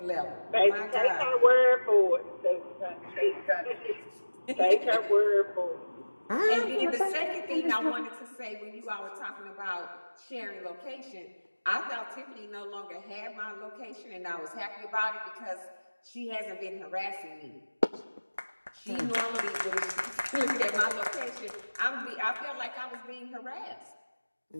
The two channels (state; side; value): inverted; both; correlation -1.00